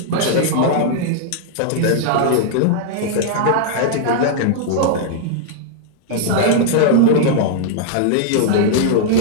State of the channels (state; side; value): different; both; correlation -0.01